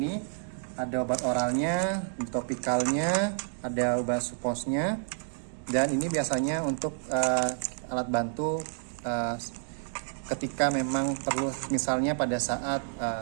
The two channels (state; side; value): silent; left; digital silence